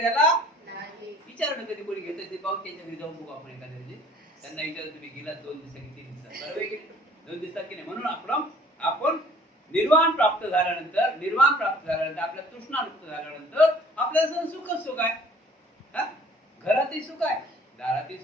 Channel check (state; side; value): normal; both; correlation 0.53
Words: त्याला, विचारणं कधी कोणी घेत ते पाहून त्यांच्या घरी जाऊन बघू आपण एखाद्या, त्यांना विचार तुम्ही गिलास 2 दिवसात किती दिसतात, बरोबर की 2 दिवसात की नाही. म्हणून आपण निर्वाण प्राप्त झाल्यानंतर, निर्वाण प्राप्त झाल्यानंतर, आपल्या तृष्णामुक्त झाल्यानंतर आपल्याला सुखच सुख आहे. घरातही सुख आहे, दारातही